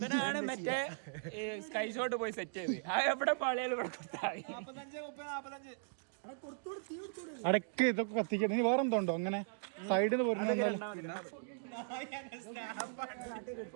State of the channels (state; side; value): silent; left; digital silence